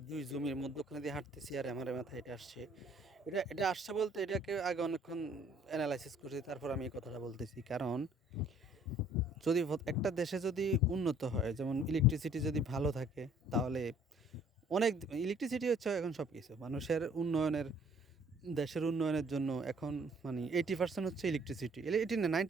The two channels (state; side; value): normal; both; correlation 0.58